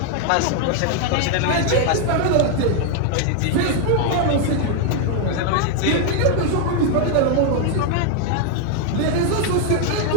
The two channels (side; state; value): both; different; correlation 0.00